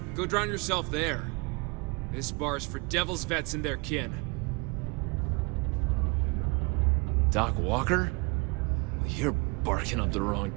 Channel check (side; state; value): left; quieter; 29.4 dB